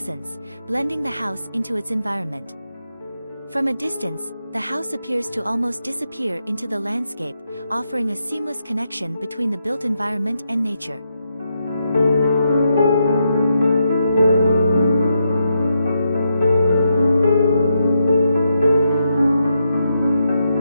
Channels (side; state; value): both; inverted; correlation -0.82